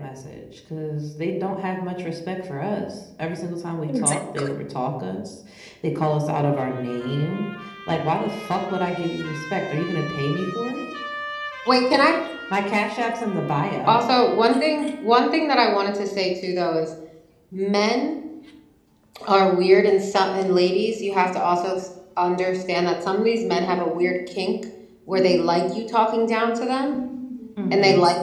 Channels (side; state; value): both; identical; correlation 1.00